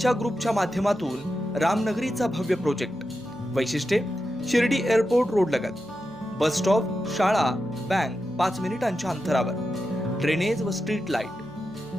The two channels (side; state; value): left; noise; hum, 28 dB below the sound